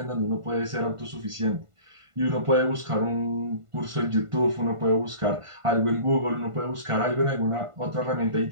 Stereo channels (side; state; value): left; late; 1.5 ms